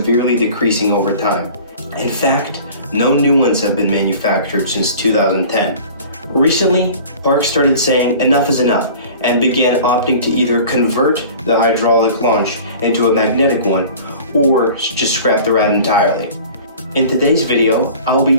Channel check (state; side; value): inverted; both; correlation -0.43